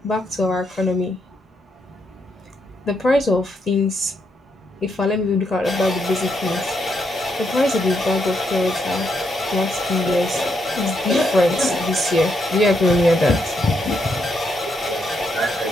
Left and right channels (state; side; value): normal; both; correlation 0.78